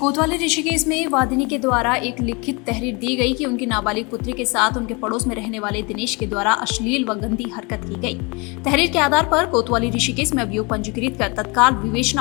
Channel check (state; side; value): quieter; right; 28.8 dB